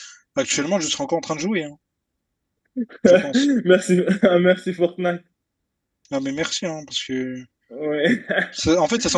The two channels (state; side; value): identical; both; correlation 1.00